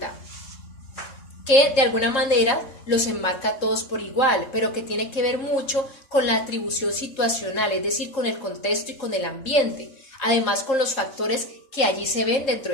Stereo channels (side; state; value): right; late; 3.7 ms